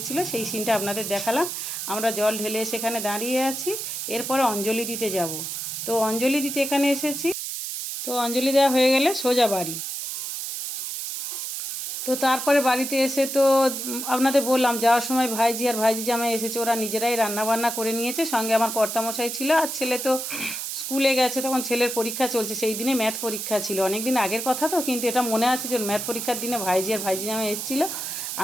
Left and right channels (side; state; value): right; noise; hiss, 5 dB below the sound